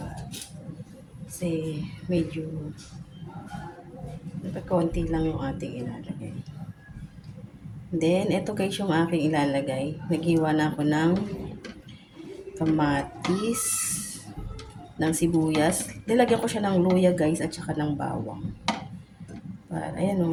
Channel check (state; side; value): identical; both; correlation 1.00